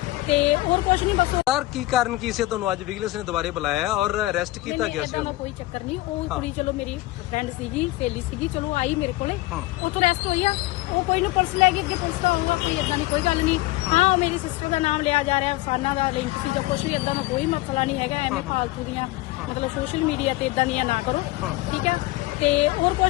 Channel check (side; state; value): right; quieter; 19.0 dB